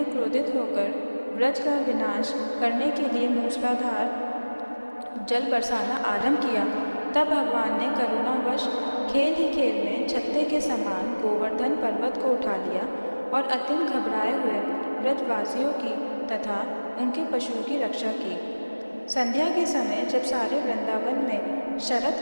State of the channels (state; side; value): inverted; both; correlation -1.00